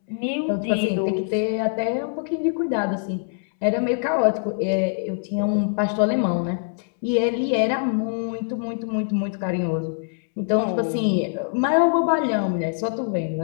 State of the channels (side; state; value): right; silent; digital silence